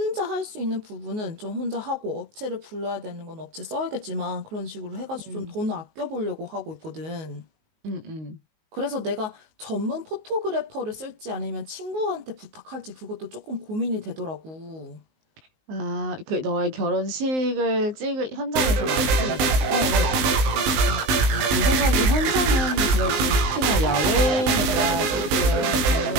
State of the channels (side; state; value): left; late; 19 ms